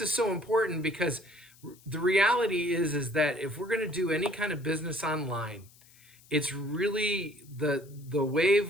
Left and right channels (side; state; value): left; noise; hiss, 26 dB below the sound